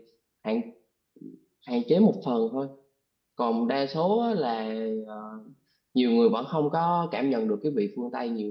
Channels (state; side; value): identical; both; correlation 1.00